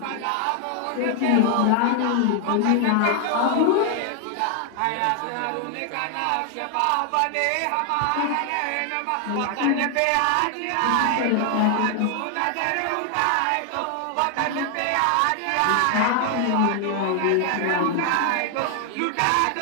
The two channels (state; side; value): different; both; correlation 0.00